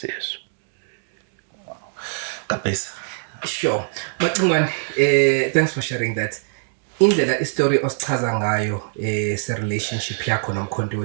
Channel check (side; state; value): left; silent; digital silence